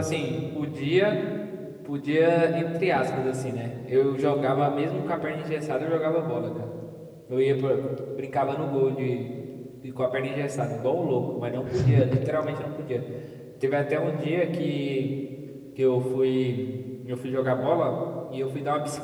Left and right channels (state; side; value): identical; both; correlation 1.00